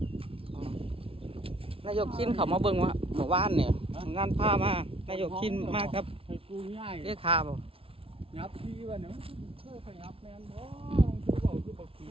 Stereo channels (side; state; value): left; late; 0.27 ms